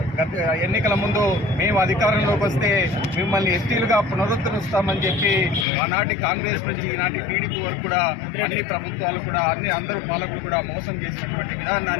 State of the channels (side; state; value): right; drops out; at 5.7 s